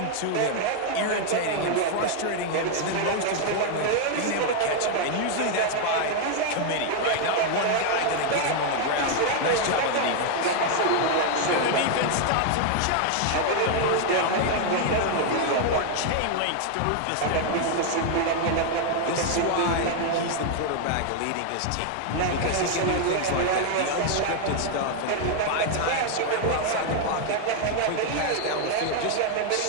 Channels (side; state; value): both; different; correlation 0.00